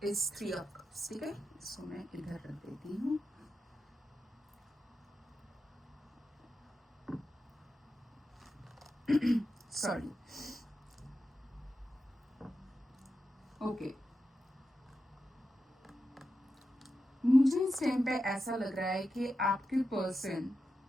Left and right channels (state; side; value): normal; both; correlation 0.89